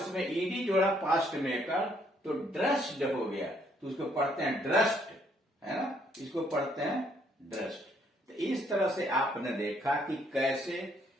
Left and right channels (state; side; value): normal; both; correlation 0.68